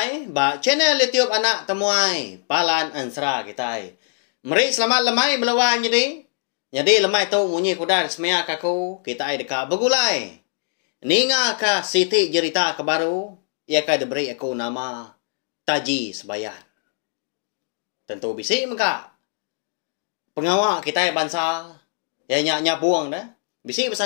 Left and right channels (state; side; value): silent; right; 55 dB below the other